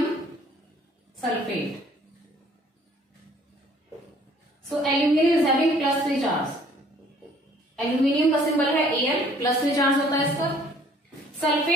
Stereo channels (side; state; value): both; normal; correlation 0.57